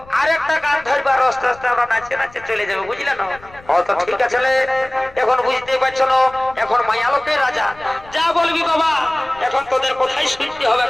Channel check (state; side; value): noise; left; rumble, 23 dB below the sound